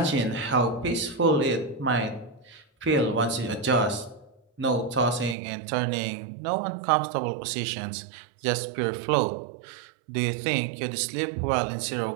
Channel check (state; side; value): drops out; left; at 5.4 s